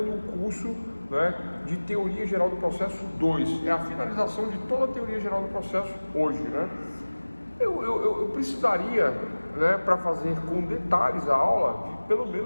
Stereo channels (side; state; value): both; inverted; correlation -1.00